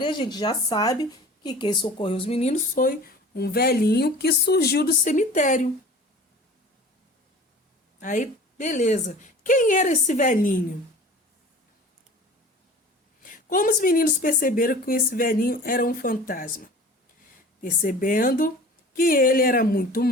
a gente já sabe que quem socorreu os meninos foi um velhinho que surgiu do cemitério. Aí, beleza. Quem era esse velhinho? Como os meninos perceberam que esse velhinho era um fantasma? Percebendo que ele era muito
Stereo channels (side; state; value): both; normal; correlation 0.42